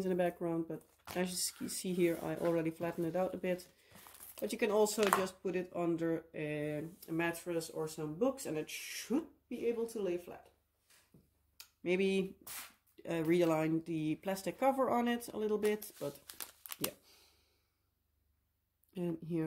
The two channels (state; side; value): identical; both; correlation 1.00